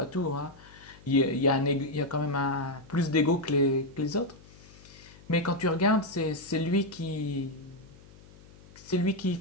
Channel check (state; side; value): noise; left; hum, 22 dB below the sound